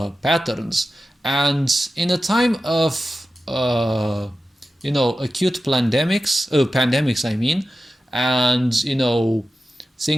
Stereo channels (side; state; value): both; normal; correlation 0.93